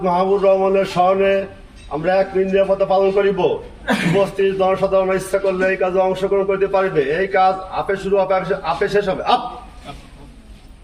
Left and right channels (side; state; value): both; identical; correlation 1.00